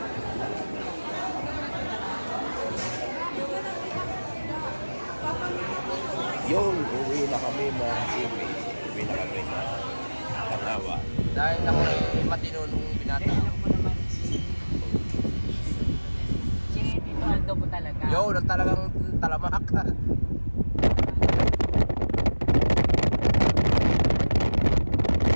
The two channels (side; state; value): both; inverted; correlation -1.00